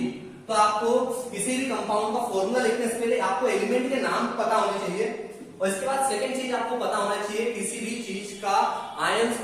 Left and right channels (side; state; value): both; identical; correlation 1.00